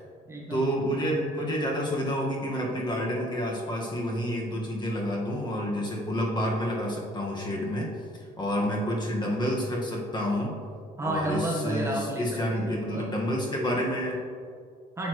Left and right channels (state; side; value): normal; both; correlation 0.60